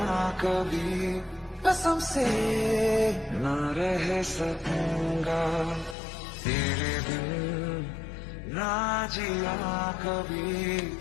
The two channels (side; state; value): right; drops out; at 6.0 s